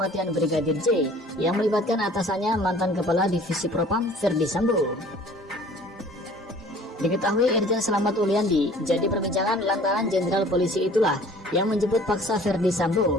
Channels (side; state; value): both; normal; correlation 0.50